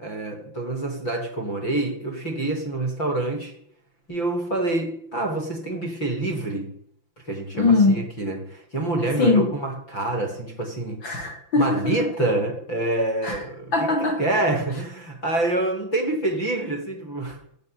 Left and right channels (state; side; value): late; right; 5.9 ms